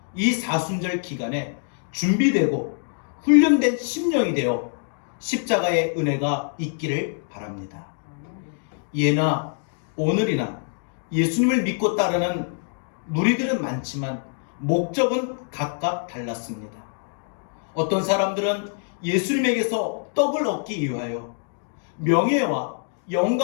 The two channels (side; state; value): right; silent; 62 dB below the other